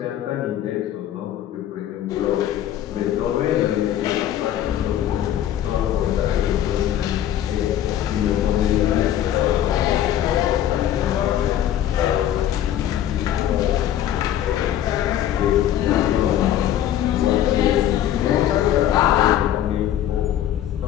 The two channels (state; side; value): quieter; right; 11.4 dB